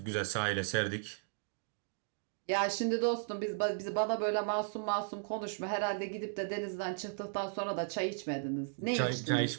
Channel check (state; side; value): silent; left; digital silence